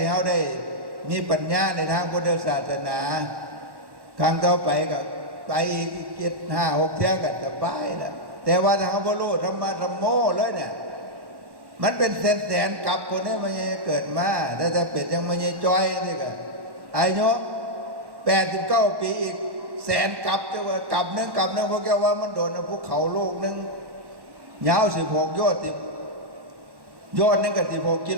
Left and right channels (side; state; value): left; late; 1.1 ms